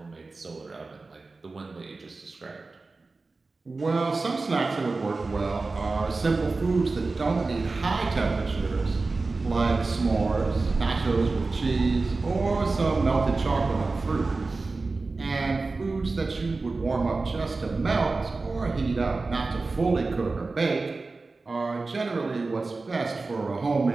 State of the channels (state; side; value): quieter; left; 3.7 dB